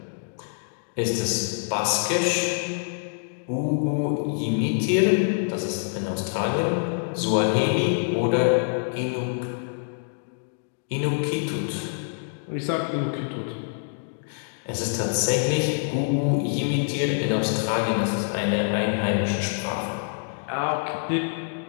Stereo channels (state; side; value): silent; right; digital silence